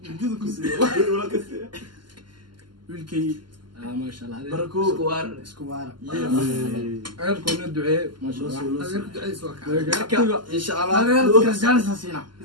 جودة كسي wilkii ما شاء الله بركو سكوار أقول كنا الدعاء ما شاء الله إن شاء الله كرجال سينا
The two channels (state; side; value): late; left; 0.71 ms